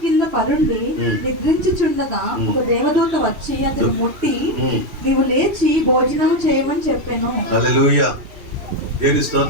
కింద పరుండి నిద్రించుచుండగా ఒక దేవదూత వచ్చి అతను ముట్టి, నీవు లేచి భోజనము చేయమని చెప్పాను. హల్లెలూయా. దేవుని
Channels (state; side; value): late; left; 2.7 ms